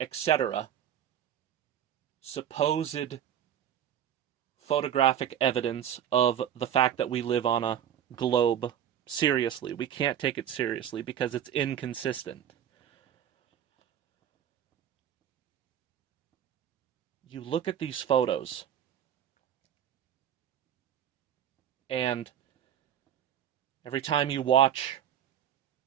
etc. supposed photographic evidence of the fact that we live on a globe seriously. We can't take it seriously because it's inconsistent. You look at these photos, and every time you watch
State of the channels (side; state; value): left; quieter; 9.9 dB